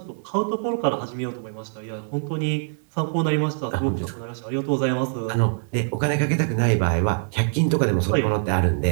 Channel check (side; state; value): left; silent; digital silence